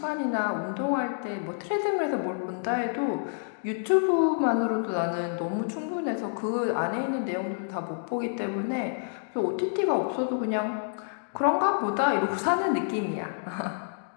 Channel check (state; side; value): silent; right; digital silence